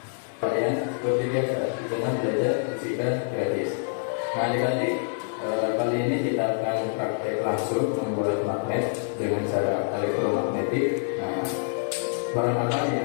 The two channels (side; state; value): right; silent; 61 dB below the other